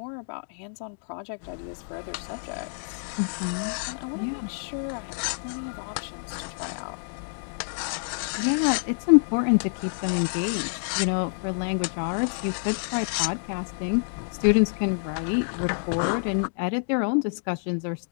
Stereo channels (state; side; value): silent; right; digital silence